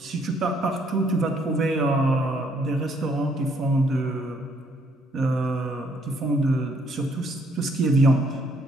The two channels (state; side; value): normal; both; correlation 0.68